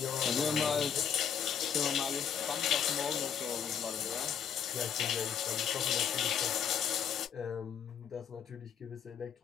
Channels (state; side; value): quieter; right; 7.9 dB